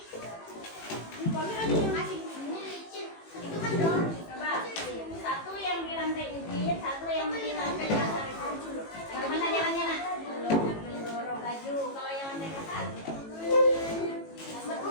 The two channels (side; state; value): right; late; 18 ms